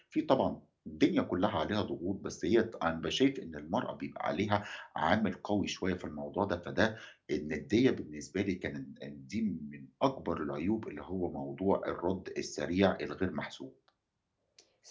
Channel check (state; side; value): identical; both; correlation 1.00